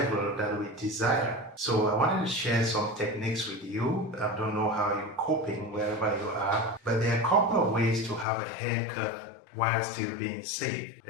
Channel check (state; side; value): drops out; right; at 8.2 s